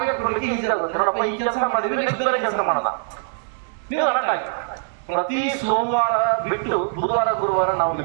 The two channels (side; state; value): left; silent; digital silence